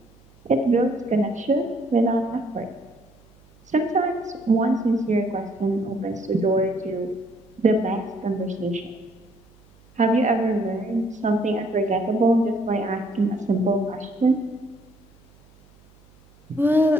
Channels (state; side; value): noise; right; hum, 29 dB below the sound